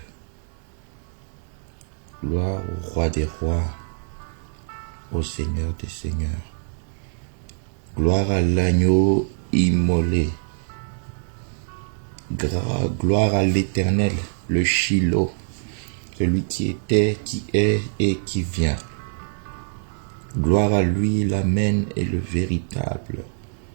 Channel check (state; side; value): silent; left; digital silence